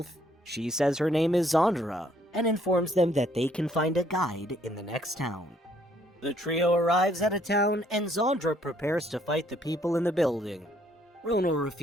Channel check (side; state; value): both; normal; correlation 0.66